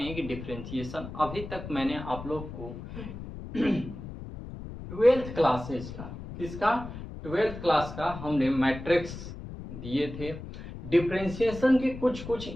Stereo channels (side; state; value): left; noise; rumble, 11 dB below the sound